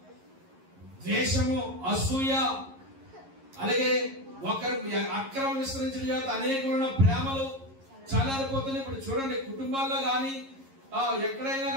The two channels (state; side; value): late; left; 11 ms